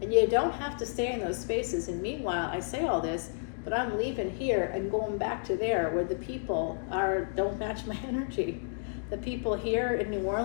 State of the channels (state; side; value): silent; right; digital silence